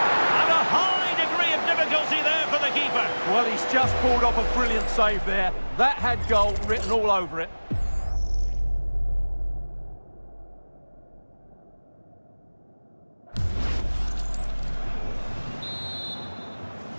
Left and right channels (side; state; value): both; inverted; correlation -1.00